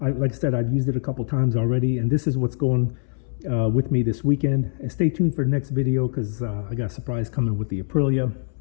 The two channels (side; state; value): right; silent; 63 dB below the other